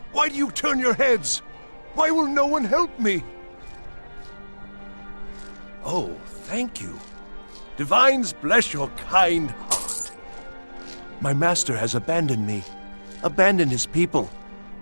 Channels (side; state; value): both; inverted; correlation -1.00